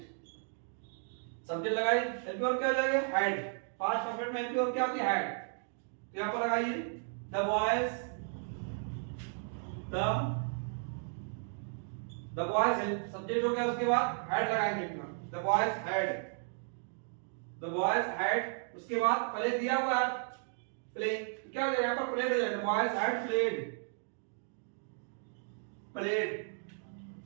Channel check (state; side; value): silent; left; 55 dB below the other